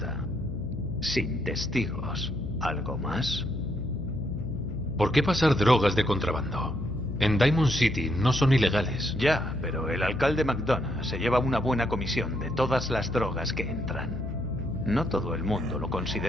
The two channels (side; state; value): left; noise; hum, 7 dB below the sound